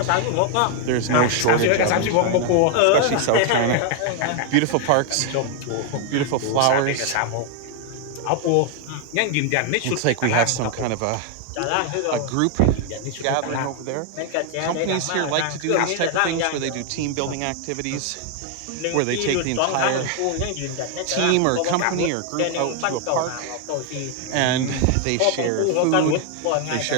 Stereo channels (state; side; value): different; both; correlation 0.00